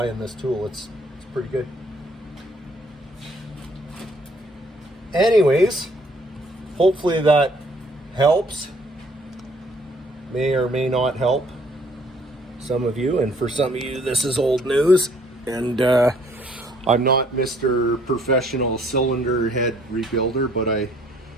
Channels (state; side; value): normal; both; correlation 0.62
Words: this tool, it's pretty good. Anyways, hopefully that helps. May or may not help some of you, and for some of you this is old news. And I'm not Mr. Professional cylinder head rebuilder, but